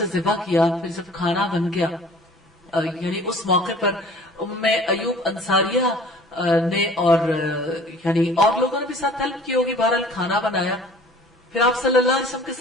ذبح کیا. پھر جب کھانا بن گیا, یعنی اس موقع پر ام ایوب انصاریہ نے اور یعنی اور لوگوں نے بھی ساتھ ہیلپ کی ہوگی, بہرحال کھانا بنایا. پھر آپ صلی اللہ علیہ وسلم کے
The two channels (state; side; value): normal; both; correlation 0.48